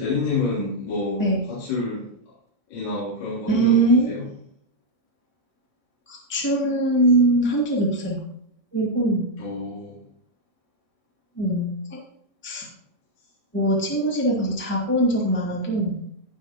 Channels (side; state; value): right; late; 1.6 ms